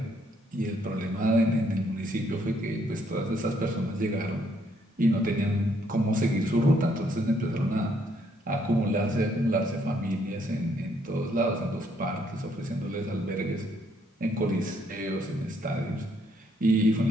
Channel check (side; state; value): both; normal; correlation 0.70